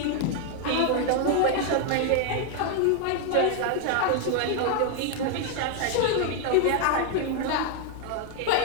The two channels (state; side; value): different; both; correlation 0.00